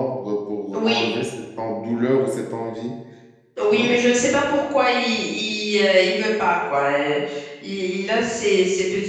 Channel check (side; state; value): both; identical; correlation 1.00